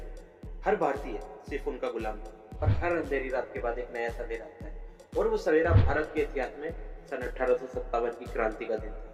हर भारतीय सिर्फ उनका गुलाम था। और हर अंधेरी रात के बाद एक नया सवेरा आता है, और वो सवेरा भारत के इतिहास में सन 1857 की क्रांति का दिन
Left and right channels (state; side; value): identical; both; correlation 1.00